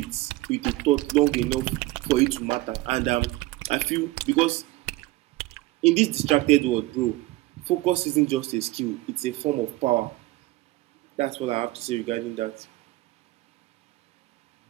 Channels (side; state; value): left; quieter; 18.7 dB